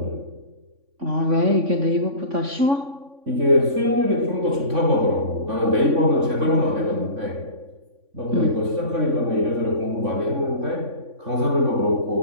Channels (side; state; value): left; late; 3.5 ms